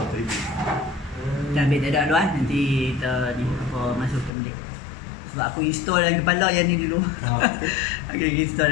Dah ambil tak ada dulu nanti kita ni masukkan balik. Sebab aku install dalam kepala yang ni dulu. Okey,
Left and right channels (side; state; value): right; drops out; at 4.3 s